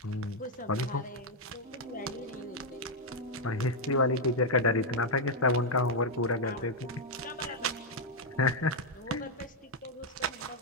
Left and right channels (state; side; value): normal; both; correlation -0.01